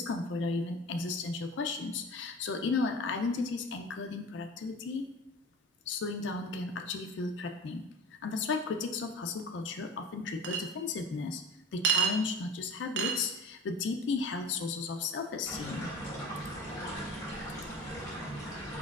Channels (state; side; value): normal; both; correlation 0.36